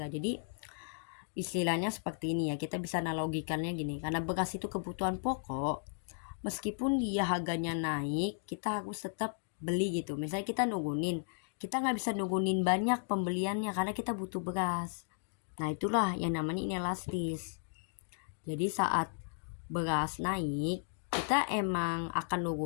Jadi istilahnya seperti ini ya, kita bisa analogikannya gini, karena beras itu kebutuhan pokok, meskipun dia harganya naik kita harus tetap beli gitu. Misalnya kita nggak bisa nurunin banyak pembeliannya karena kita butuh beras. Nah itulah yang namanya inelastis. Jadi saat beras naik kita emang akan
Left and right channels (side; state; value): right; silent; digital silence